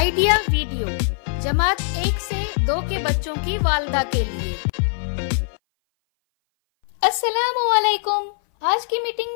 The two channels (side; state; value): right; silent; 59 dB below the other